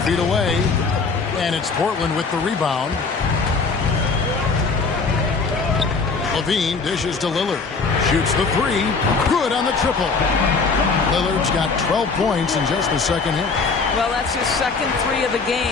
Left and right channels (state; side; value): quieter; right; 4.5 dB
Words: feet away. And it's Portland with the rebound. Levine dishes to Lillard. Shoots the 3. Good on the triple. Lillard's got 12 points in just the second hit. Well, that's his second 3 of the